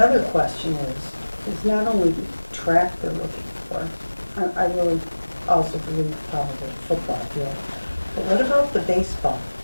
question is not only the track they're looking for, I really also believe probably the football field, but what about the baseball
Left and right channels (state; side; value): inverted; both; correlation -1.00